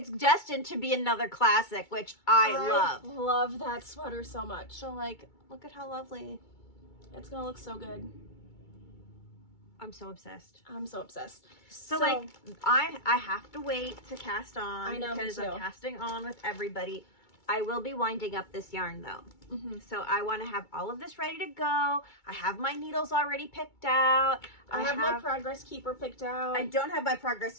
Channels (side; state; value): right; late; 2.3 ms